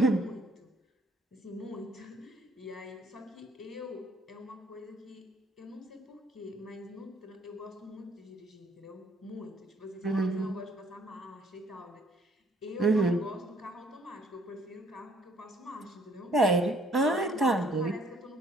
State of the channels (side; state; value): both; normal; correlation 0.62